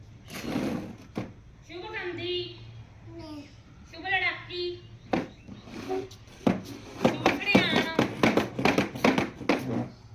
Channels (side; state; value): both; identical; correlation 1.00